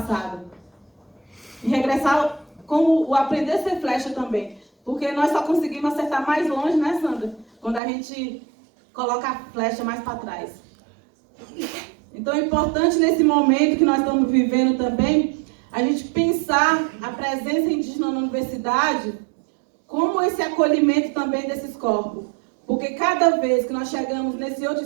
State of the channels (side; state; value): left; drops out; at 7.8 s